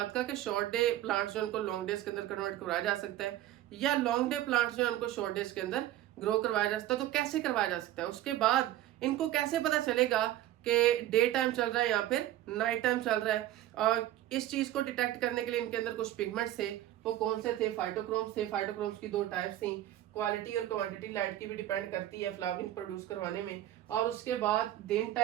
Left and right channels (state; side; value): quieter; left; 13.7 dB